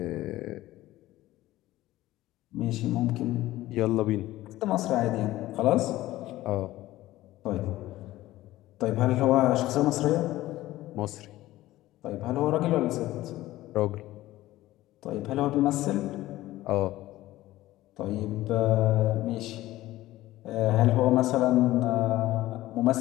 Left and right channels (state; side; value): quieter; right; 16.2 dB